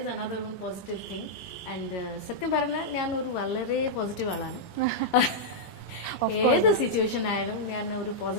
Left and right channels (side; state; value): right; late; 20 ms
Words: another one positive thing. And സത്യം പറഞ്ഞാൽ ഞാൻ ഒരു വളരെ പോസിറ്റീവ് ആളാണ്. ഏത് സിറ്റുവേഷൻ ആയാലും ഞാൻ ഒരു